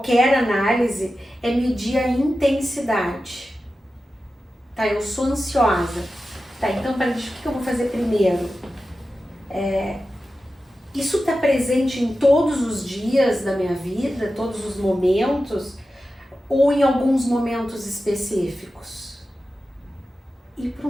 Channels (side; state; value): both; normal; correlation 0.93